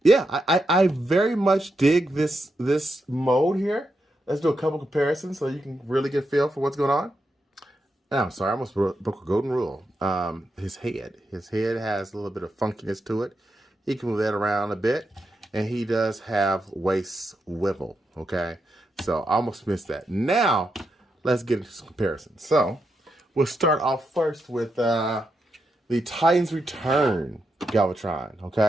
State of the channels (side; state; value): both; normal; correlation 0.84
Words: I very much dig this mode here. Let's do a couple comparisons so you can really get a feel for what's going on. Oh, I'm sorry, I almost broke a golden rule. His head has a little bit of funkiness to it. He can move that around a bit, and he does have waist swivel. Okay, so I almost missed that. Now, let's get into some comparisons. So, we'll start off first with the Titans Return Galvatron.